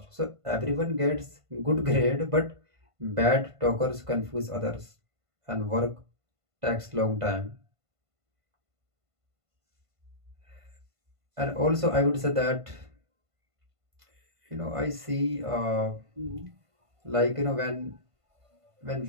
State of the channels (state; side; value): late; left; 1.5 ms